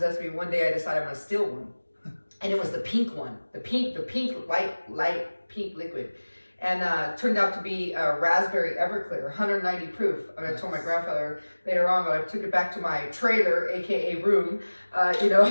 me. One day I decided I'm gonna steal one. And it was the pink one, the pink light pink liquid. And turned out to be a raspberry Everclear, 190 proof. And I told my grandfather later on, but I took it back to my trailer, AKA room,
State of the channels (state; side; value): inverted; both; correlation -1.00